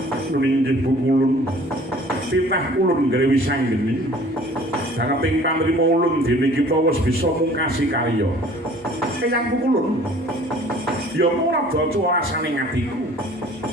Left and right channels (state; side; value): normal; both; correlation 0.50